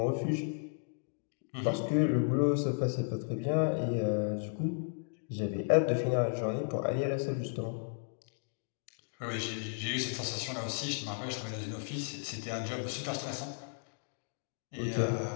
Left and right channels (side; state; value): right; silent; digital silence